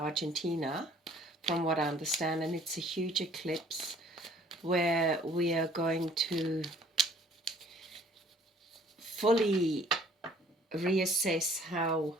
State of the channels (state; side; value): normal; both; correlation 0.57